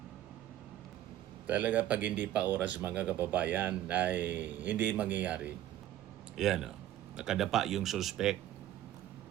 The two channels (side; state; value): left; quieter; 12.6 dB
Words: Talaga pag hindi pa oras mga kababayan ay hindi mangyayari. Yan nakadapa yung suspect.